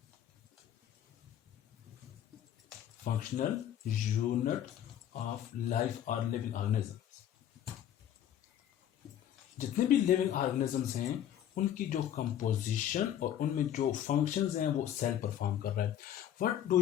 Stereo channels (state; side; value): quieter; right; 10.6 dB